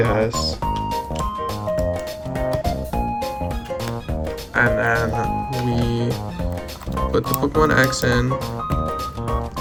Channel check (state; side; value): identical; both; correlation 1.00